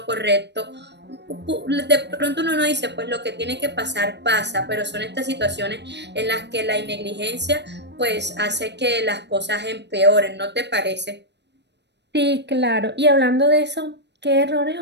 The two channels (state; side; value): late; left; 0.50 ms